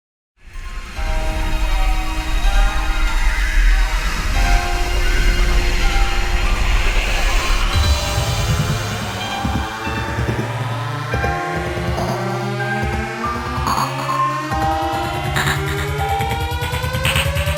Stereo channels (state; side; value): identical; both; correlation 1.00